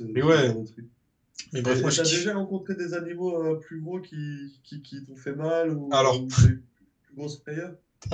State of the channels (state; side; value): identical; both; correlation 1.00